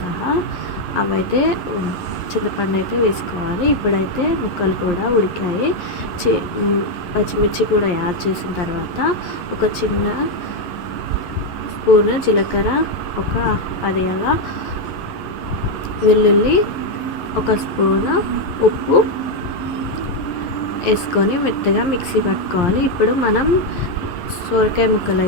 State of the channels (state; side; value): late; right; 11 ms